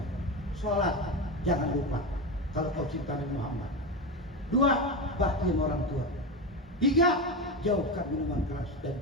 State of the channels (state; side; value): normal; both; correlation 0.18